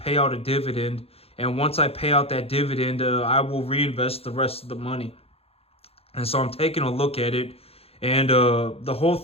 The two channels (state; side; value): late; right; 0.29 ms